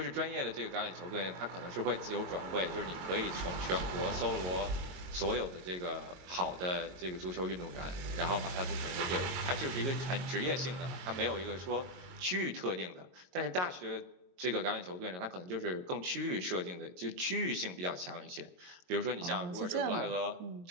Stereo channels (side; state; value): left; late; 22 ms